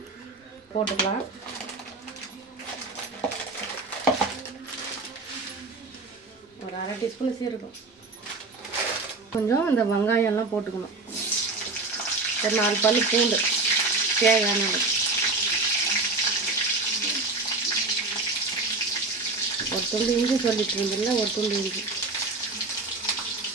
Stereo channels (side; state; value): left; quieter; 3.5 dB